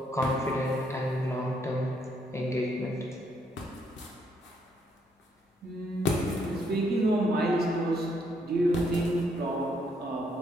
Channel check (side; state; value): both; normal; correlation 0.72